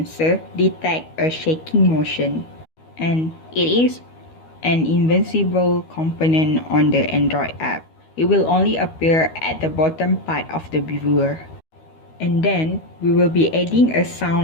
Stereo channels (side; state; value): right; late; 12 ms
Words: detects a shaking motion, and it is an invisible component on the Android app. It will only appear at the bottom part of the viewer. And then, we will be adding a